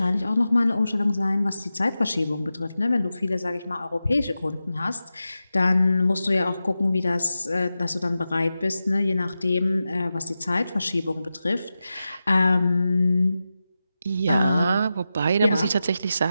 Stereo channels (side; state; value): both; inverted; correlation -0.92